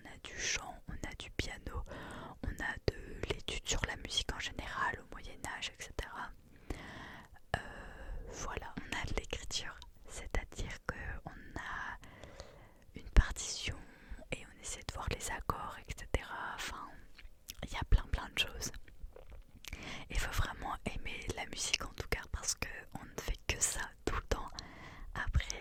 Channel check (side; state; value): both; identical; correlation 1.00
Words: a du chant, on a du piano, on a de l'étude sur la musique en général au Moyen-Âge, etc. Voilà, on a de l'écriture, c'est-à-dire qu'on a une partition et on essaie de voir les accords, etc. Enfin, il y a plein de choses. Il faut vraiment aimer la musique en tout cas parce qu'on ne fait que ça tout le temps.